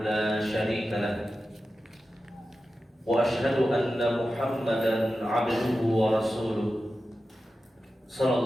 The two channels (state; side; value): normal; both; correlation 0.92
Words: لا شريك له وأشهد أن محمدا عبده ورسوله صلى